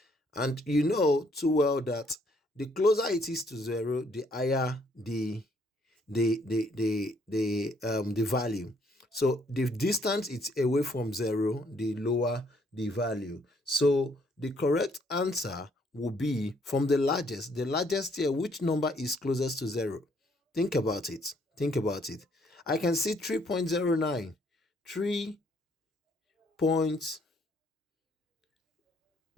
And you know too well that the closer it is to 0, the higher the value. So the distance it's away from 0, the lower the value. So the correct answer will be from the largest. The largest here, which number is closest to 0? Think about it. Think about it. I can see 3.09.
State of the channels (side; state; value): both; normal; correlation 0.67